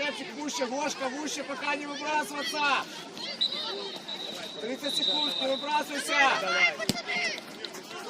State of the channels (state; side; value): identical; both; correlation 1.00